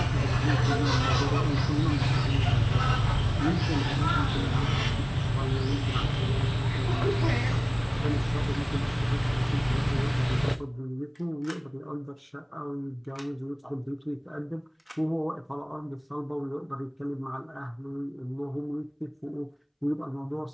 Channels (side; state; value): both; identical; correlation 1.00